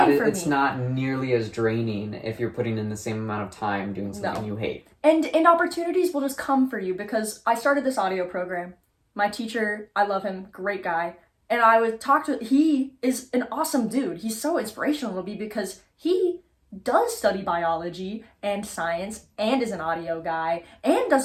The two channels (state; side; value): identical; both; correlation 1.00